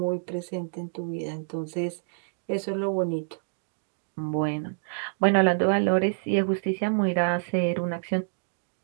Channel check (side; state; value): left; silent; digital silence